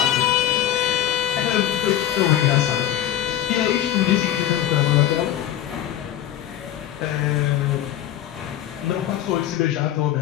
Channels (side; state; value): right; quieter; 11.7 dB